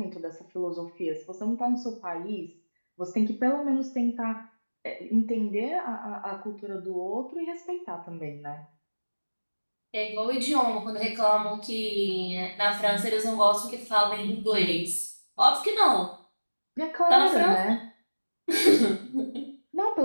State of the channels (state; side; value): inverted; both; correlation -1.00